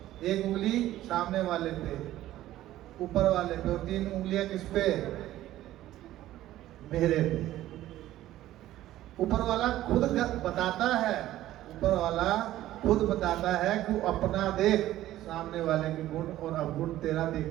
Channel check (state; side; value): quieter; left; 14.3 dB